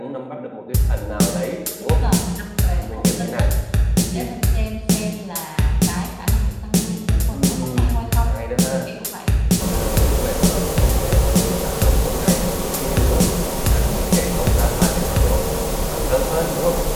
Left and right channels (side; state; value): both; identical; correlation 1.00